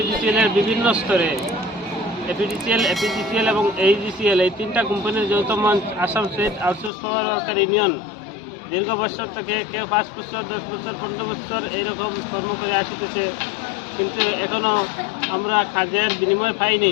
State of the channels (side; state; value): right; drops out; at 6.9 s